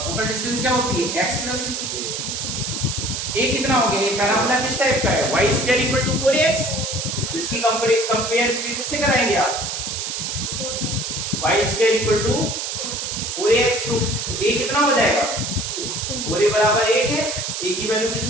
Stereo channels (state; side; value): noise; right; hiss, 4 dB below the sound